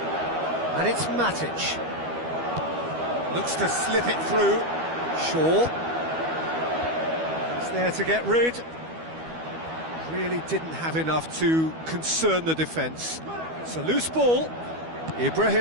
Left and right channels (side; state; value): left; late; 12 ms